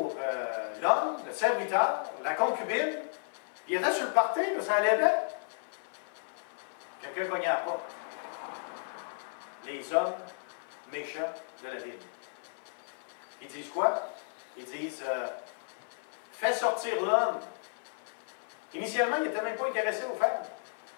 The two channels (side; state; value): right; silent; 56 dB below the other